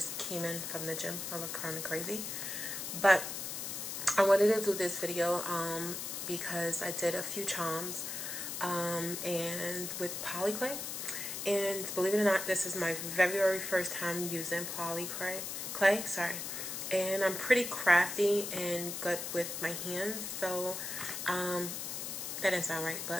came in from the gym. I look kind of crazy, but I wanted to do this video because I did a few charms. And with Polymer Clay, and believe it or not, this is my very first time using Polymer Clay, sorry, and I'm pretty crafty and good with my hands, so that didn't sound right,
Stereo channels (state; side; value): noise; left; hiss, 5 dB below the sound